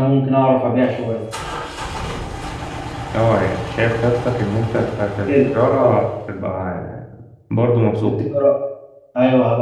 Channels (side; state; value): both; identical; correlation 1.00